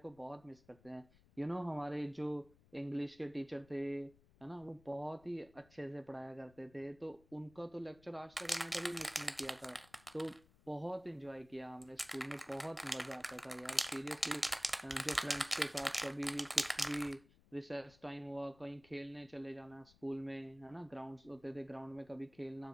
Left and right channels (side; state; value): left; noise; rumble, 26 dB below the sound